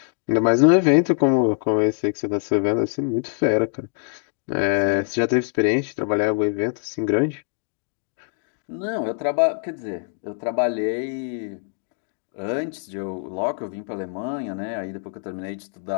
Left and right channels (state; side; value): silent; right; 63 dB below the other